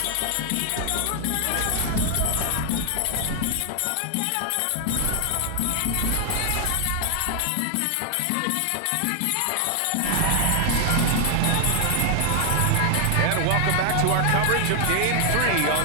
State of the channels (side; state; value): both; different; correlation 0.00